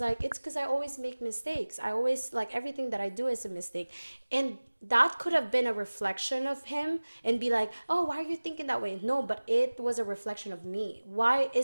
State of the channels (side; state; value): both; inverted; correlation -1.00